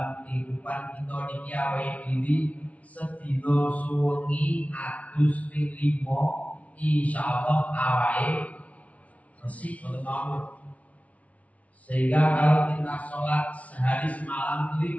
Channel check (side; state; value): right; late; 0.067 ms